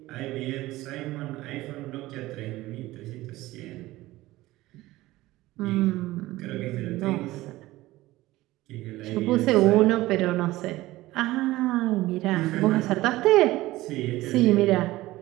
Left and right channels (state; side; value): quieter; left; 17.7 dB